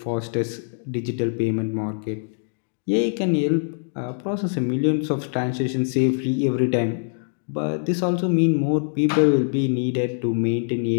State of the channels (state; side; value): silent; right; digital silence